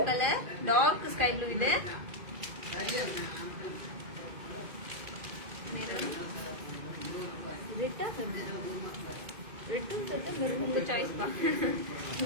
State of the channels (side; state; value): left; late; 2.4 ms